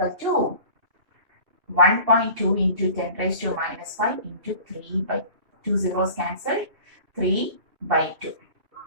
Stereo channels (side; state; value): left; late; 2.6 ms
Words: to 1.2 into 10 raised to minus 5 into 3 by 2 zeros cancelled, 3 by 2.